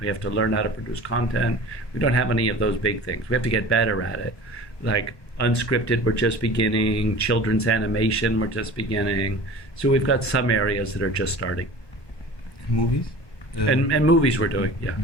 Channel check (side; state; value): right; late; 1.2 ms